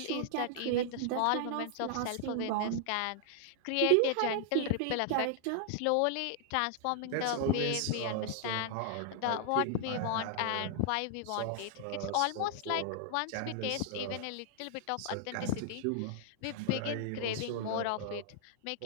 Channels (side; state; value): both; different; correlation -0.01